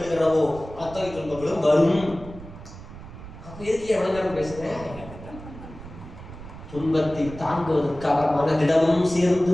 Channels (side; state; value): right; noise; rumble, 14 dB below the sound